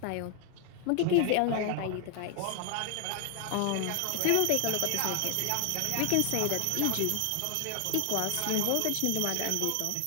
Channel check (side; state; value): both; different; correlation 0.00